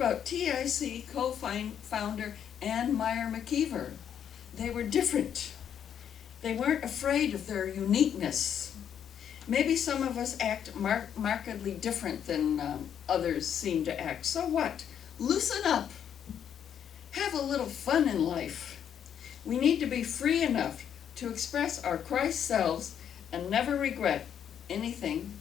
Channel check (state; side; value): quieter; right; 8.9 dB